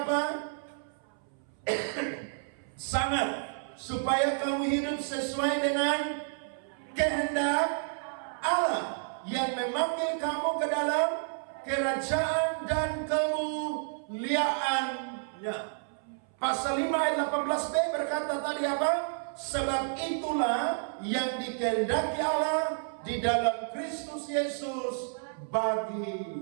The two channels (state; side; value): silent; left; 57 dB below the other